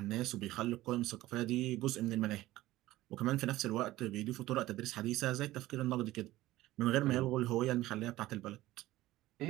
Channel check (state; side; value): quieter; left; 16.6 dB